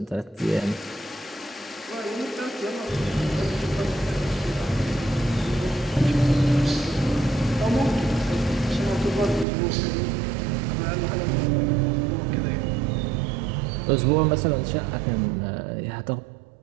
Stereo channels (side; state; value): left; drops out; at 9.5 s